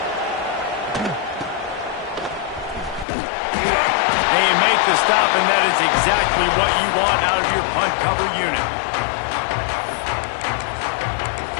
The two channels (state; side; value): drops out; right; at 3.1 s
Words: And you make the stop, and that is exactly what you want out of your punt cover unit.